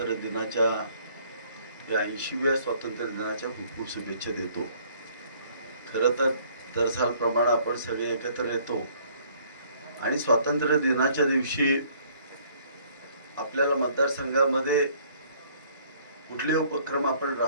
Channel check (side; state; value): both; inverted; correlation -0.60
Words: दिनाच्या या 80व्या स्वातंत्र्य दिनाच्या खूप खूप शुभेच्छा देतो. खरं तर दरसालप्रमाणे आपण सगळे एकत्र येतो आणि स्वातंत्र्य दिनाच्या दिवशी आपल्याला मतदारसंघामध्ये कुठले उपक्रम आपण